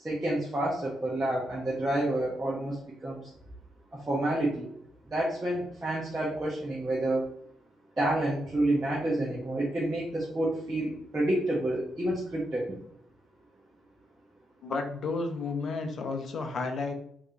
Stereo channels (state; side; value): normal; both; correlation 0.84